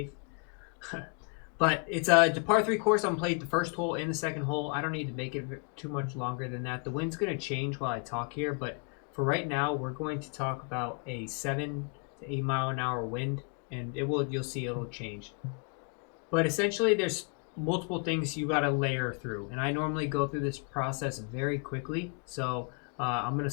But it's a par 3 course. I'm played the first hole and the second hole. I don't need to make it too much longer than that. The wind's going to change while I talk here, but for right now, we're going to talk about a 7 to 8 mile an hour wind, and you'll see it'll change. But essentially, there's multiple things you got to layer through, and I normally go through this process very quickly, so I'm going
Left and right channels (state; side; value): quieter; right; 37.4 dB